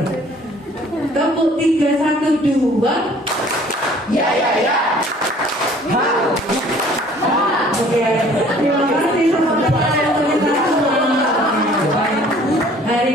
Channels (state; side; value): normal; both; correlation 0.54